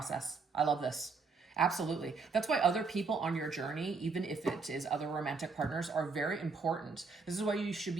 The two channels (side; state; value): left; quieter; 4.5 dB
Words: I love this. Absolutely. That's why other people on your journey, even if it is other romantic partners, are very important. This is why you should